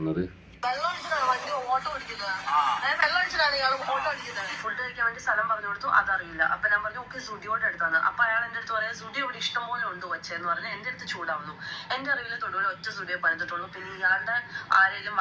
ഫുഡ് കഴിക്കാൻ വേണ്ടി സ്ഥലം പറഞ്ഞു കൊടുത്തു, അതറിയില്ല. അപ്പൊ ഞാൻ പറഞ്ഞു ഓക്കെ സുഡിയോടെ അടുത്താണ്. അപ്പൊ അയാൾ എന്റെ അടുത്ത് പറയാം സുഡിയോ ഇവിടെ ഇഷ്ടം പോലെ ഉണ്ട് വച്ചെന്ന് പറഞ്ഞ് എന്റെ അടുത്ത് ചൂടാവുന്നു. എന്റെ അറിവിൽ തൊടുപുഴ ഒറ്റ സുഡിയോ പണിതിട്ടുള്ളൂ. പിന്നെ ഇയാളുടെ ആരെങ്കിലും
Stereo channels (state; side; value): identical; both; correlation 1.00